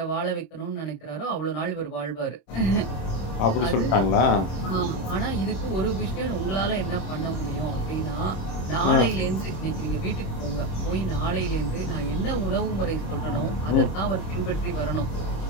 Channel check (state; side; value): late; right; 26 ms